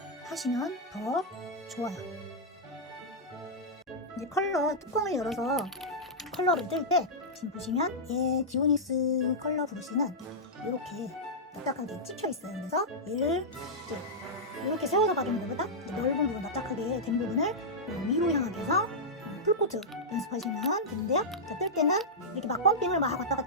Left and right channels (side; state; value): both; normal; correlation -0.10